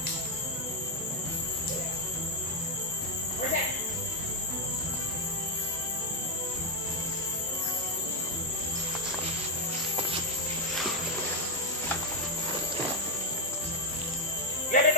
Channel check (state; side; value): normal; both; correlation 0.03